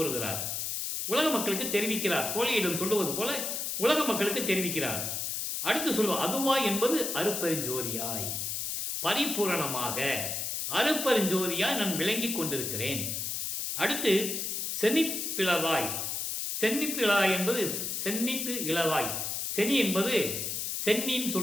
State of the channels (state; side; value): noise; left; hiss, 2 dB below the sound